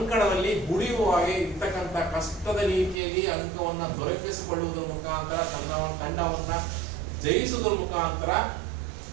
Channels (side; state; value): left; drops out; at 3.0 s